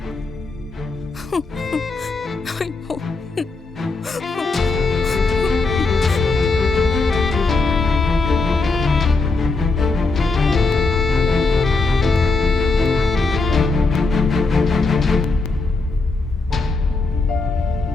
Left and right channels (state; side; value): quieter; right; 3.7 dB